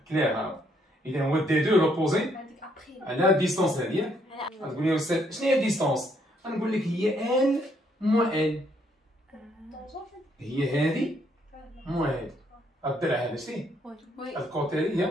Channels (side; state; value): both; normal; correlation 0.70